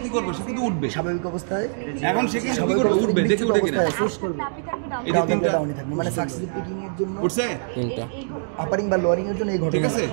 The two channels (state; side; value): silent; left; digital silence